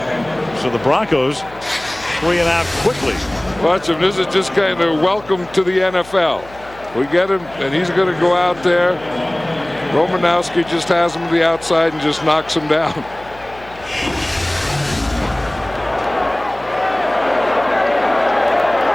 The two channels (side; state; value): left; noise; hum, 22 dB below the sound